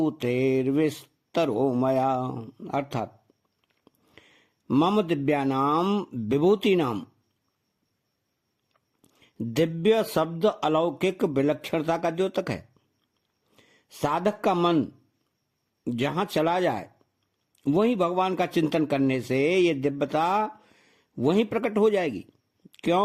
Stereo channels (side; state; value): both; identical; correlation 1.00